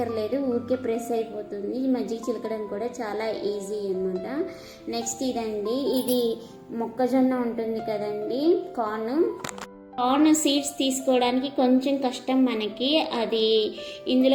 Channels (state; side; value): identical; both; correlation 1.00